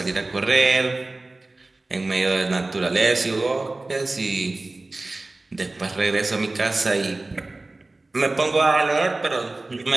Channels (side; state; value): left; quieter; 3.0 dB